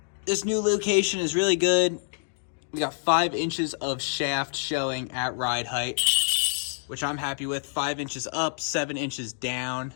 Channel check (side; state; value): right; silent; digital silence